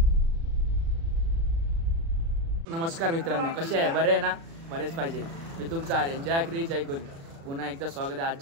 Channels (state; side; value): late; left; 36 ms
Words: नमस्कार मित्रांनो, कसे आहे? बरे आहे ना? बरेच पाहिजे. मी तुमचा आर्यन, जय क्री जय कोली. पुन्हा एकदा स्वागत आहे